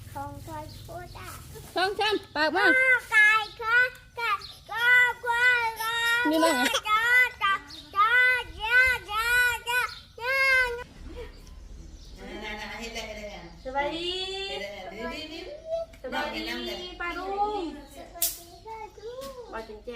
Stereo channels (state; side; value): identical; both; correlation 1.00